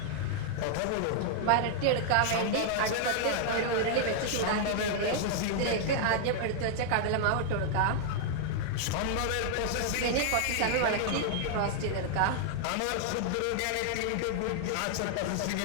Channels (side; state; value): both; different; correlation 0.00